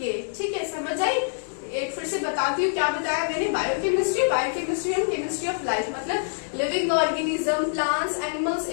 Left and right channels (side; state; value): right; silent; digital silence